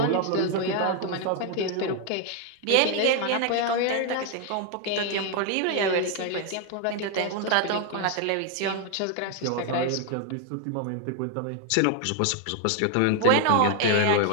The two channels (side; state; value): both; different; correlation 0.01